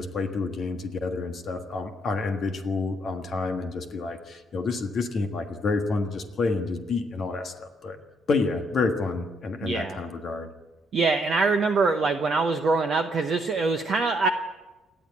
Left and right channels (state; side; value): normal; both; correlation 0.71